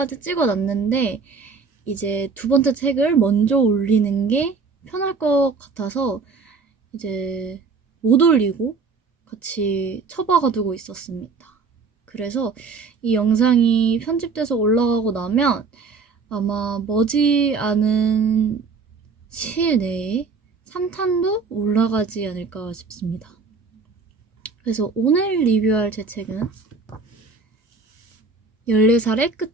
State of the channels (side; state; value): left; quieter; 4.7 dB